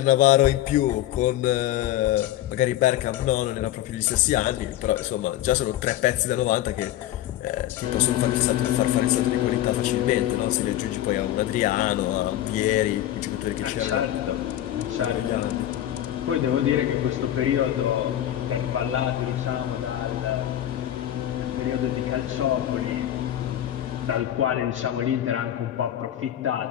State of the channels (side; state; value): right; quieter; 12.8 dB